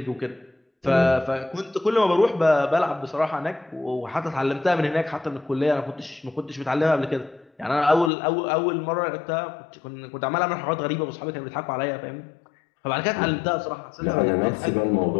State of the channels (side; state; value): right; drops out; at 8.1 s